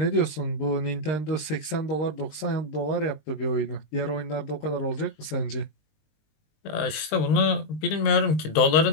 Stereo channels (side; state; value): right; late; 19 ms